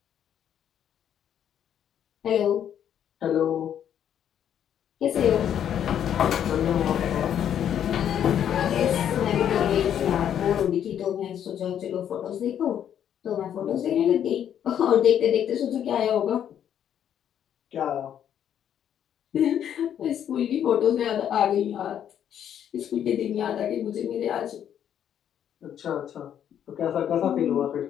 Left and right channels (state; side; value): quieter; right; 9.6 dB